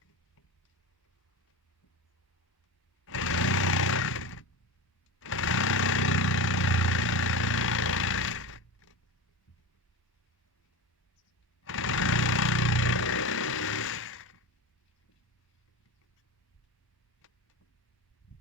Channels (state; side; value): normal; both; correlation 0.25